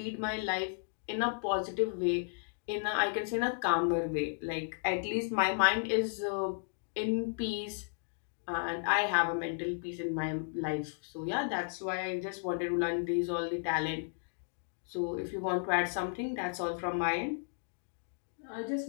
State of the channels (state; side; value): silent; right; digital silence